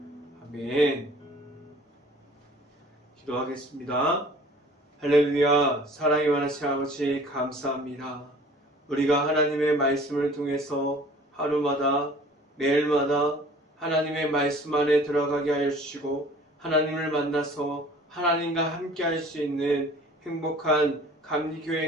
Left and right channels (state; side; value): normal; both; correlation 0.49